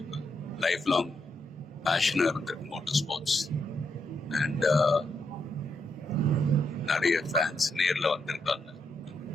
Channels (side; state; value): both; normal; correlation 0.80